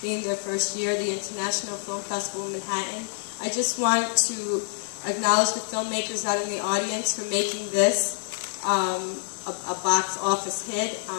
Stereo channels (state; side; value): silent; right; digital silence